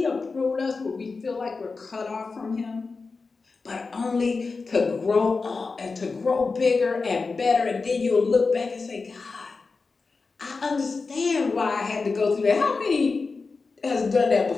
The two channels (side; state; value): right; quieter; 4.3 dB